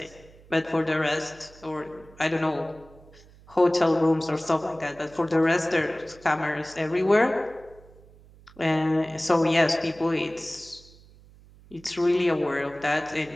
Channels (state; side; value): noise; right; hum, 24 dB below the sound